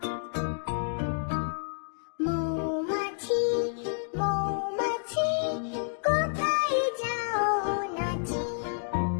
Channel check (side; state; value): right; silent; digital silence